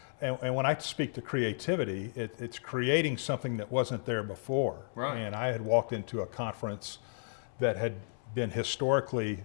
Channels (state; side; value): silent; right; 56 dB below the other